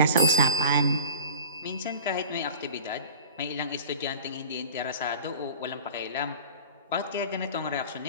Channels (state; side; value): inverted; both; correlation -0.36